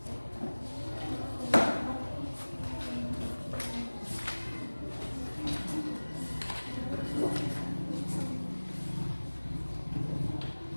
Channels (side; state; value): both; inverted; correlation -1.00